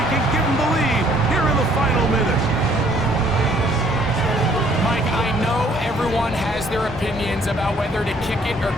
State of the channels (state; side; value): normal; both; correlation 0.62